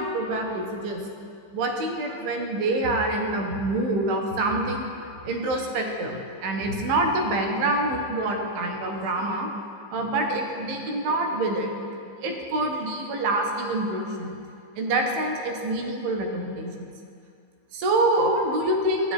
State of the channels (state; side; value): late; left; 15 ms